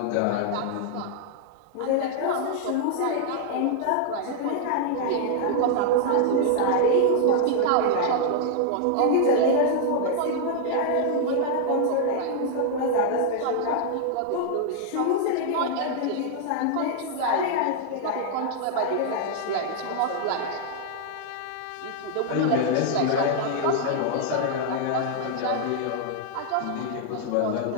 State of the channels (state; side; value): different; both; correlation -0.01